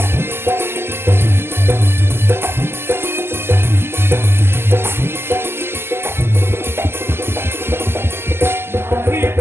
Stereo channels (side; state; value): left; late; 0.12 ms